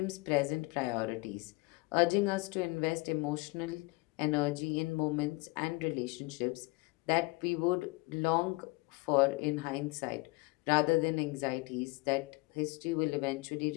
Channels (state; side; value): quieter; right; 24.9 dB